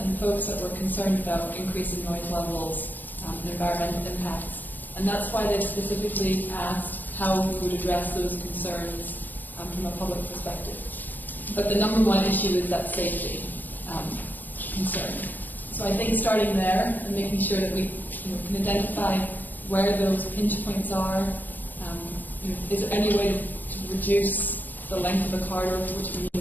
folks that were concerned about increasing noise levels and environmental impacts. And that's why they specifically asked how we would address those concerns from a public perspective. But the number one issue is that safety concern. So I think starting there and making sure that we can identify where those pinch points are. Is there any way to reduce the length of a corridor for which we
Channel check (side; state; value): right; late; 0.089 ms